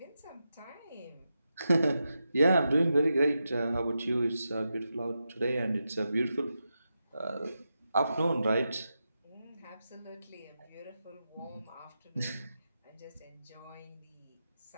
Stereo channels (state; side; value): inverted; both; correlation -0.89